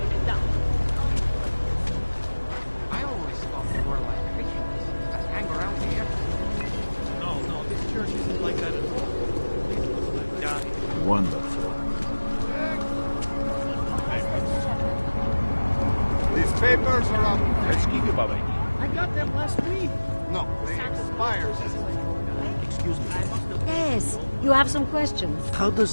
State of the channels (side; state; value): both; inverted; correlation -1.00